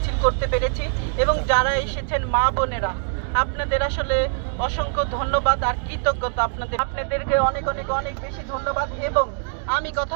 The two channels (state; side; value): silent; left; digital silence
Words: করতে পেরেছি এবং যারা এসেছেন মা বোনেরা আপনাদের আসলে অসংখ্য ধন্যবাদ আর কৃতজ্ঞতা আপনাদেরকে অনেক অনেক অনেক বেশি ধন্যবাদ। এবং আমি